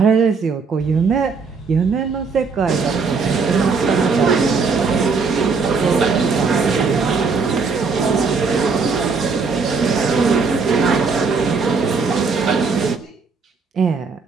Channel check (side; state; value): left; quieter; 4.8 dB